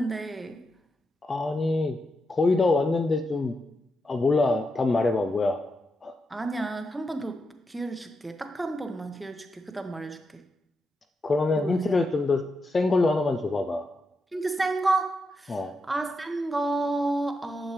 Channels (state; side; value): normal; both; correlation 0.85